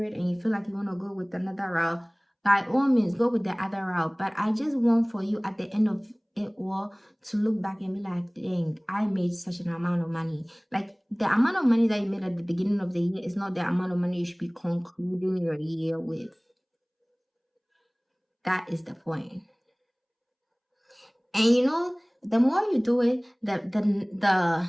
and you feel like you want to go with another route, by all means, go with the other route. But I just want for you at the end of it all to look back and be like, dang, I made such an amount of money. Like the amount of money that you made at the beginning of the year is not the amount of money you should be concluding your year with. That is the point. And you know, the more you do it, the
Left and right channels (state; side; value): identical; both; correlation 1.00